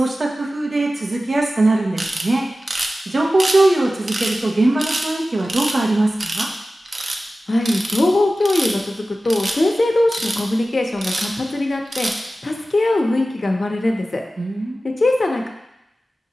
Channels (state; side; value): normal; both; correlation 0.95